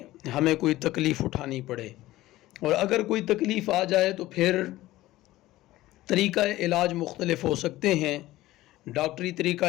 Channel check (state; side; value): quieter; right; 16.7 dB